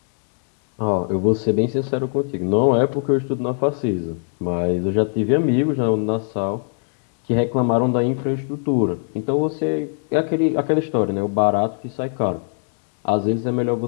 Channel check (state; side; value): silent; right; 65 dB below the other